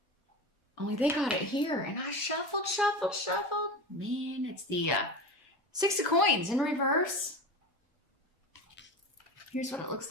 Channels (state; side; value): normal; both; correlation 0.27